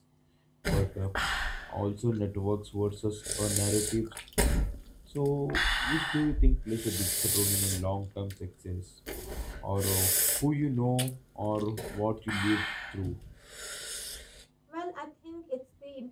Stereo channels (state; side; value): identical; both; correlation 1.00